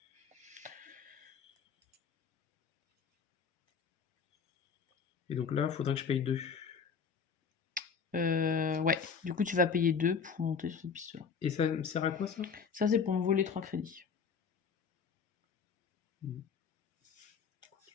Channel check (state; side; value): quieter; right; 6.1 dB